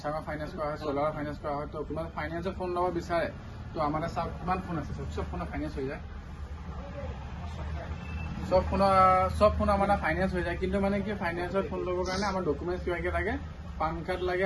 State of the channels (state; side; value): identical; both; correlation 1.00